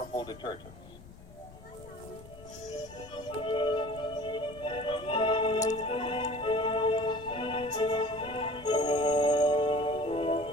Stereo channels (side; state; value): left; noise; rumble, 18 dB below the sound